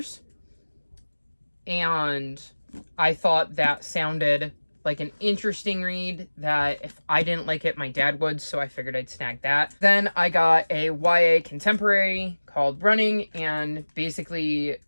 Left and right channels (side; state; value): both; inverted; correlation -1.00